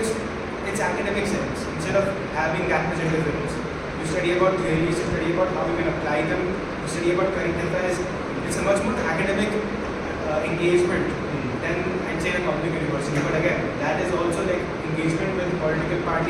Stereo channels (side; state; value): both; identical; correlation 1.00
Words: academic sense. Instead of having that much interference, you study about theories, you study about how you can apply them, you study about current affairs. It's a much more academic engagement than I'd say in a public university. But again, that is also like engagement with political